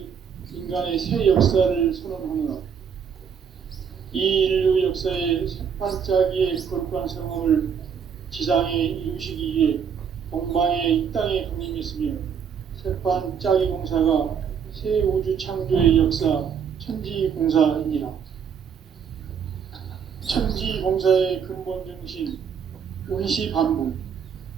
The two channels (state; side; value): quieter; left; 7.2 dB